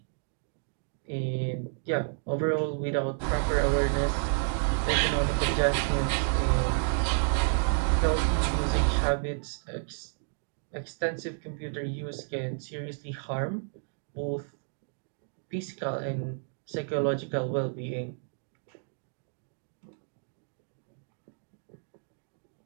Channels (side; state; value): left; silent; digital silence